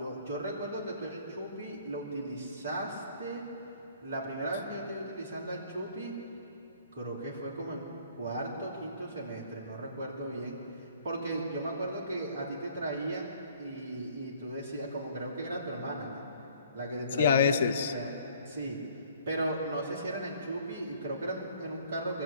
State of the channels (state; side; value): inverted; both; correlation -0.57